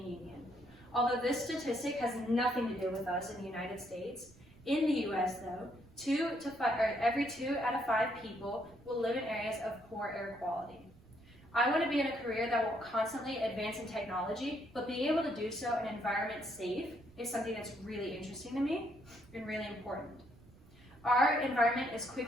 Union. Although this statistic has nothing to do with us in the United States, in the US though, every 2 out of 5 people will live in areas of poor air quality. I want to be in a career that will constantly advance in technology, but being able to do so in an environment safe is something that's really interesting to me and really important. Our environment is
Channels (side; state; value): right; noise; rumble, 24 dB below the sound